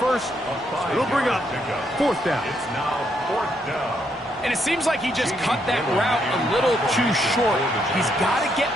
It'll bring up 4th down. It's now 4th down. And it seems like he just cut that route a little too short. He's got to get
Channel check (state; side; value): normal; both; correlation 0.76